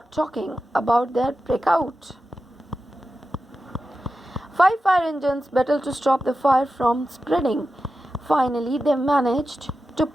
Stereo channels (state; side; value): normal; both; correlation 0.92